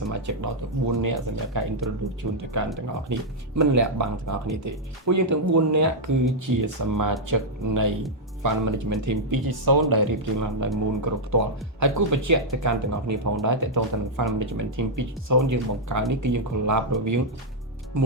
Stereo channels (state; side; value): normal; both; correlation -0.04